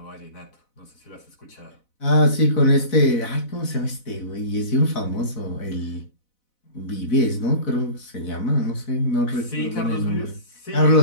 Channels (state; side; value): late; right; 4.0 ms